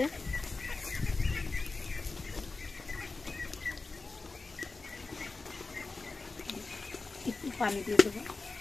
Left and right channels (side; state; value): right; quieter; 3.8 dB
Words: একটু পানি দিয়ে দেবো।